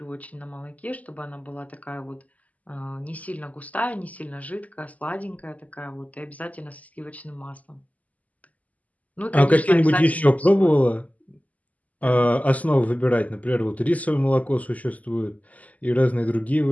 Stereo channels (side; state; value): right; late; 0.075 ms